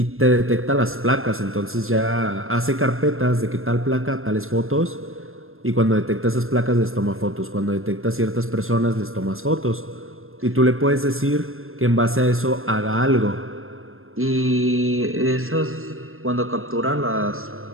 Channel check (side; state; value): left; late; 0.61 ms